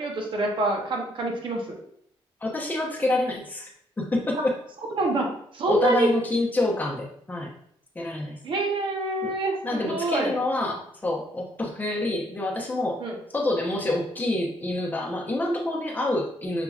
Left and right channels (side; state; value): both; normal; correlation 0.69